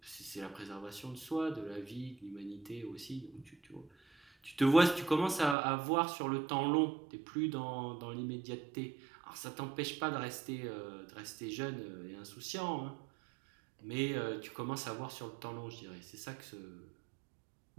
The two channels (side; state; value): left; drops out; at 5.6 s